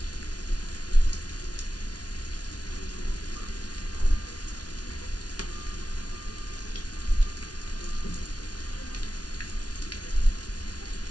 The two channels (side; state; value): right; late; 0.69 ms